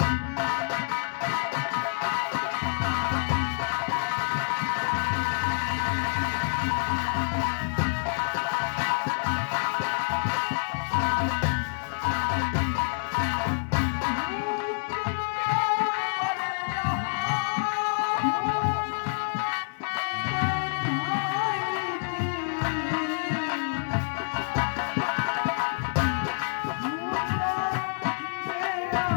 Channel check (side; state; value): right; silent; 60 dB below the other